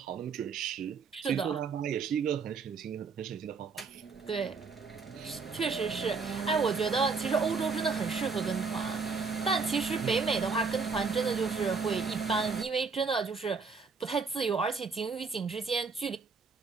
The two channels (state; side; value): quieter; left; 4.9 dB